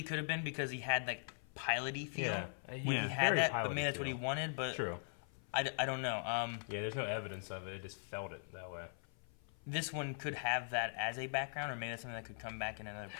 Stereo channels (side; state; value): right; silent; 51 dB below the other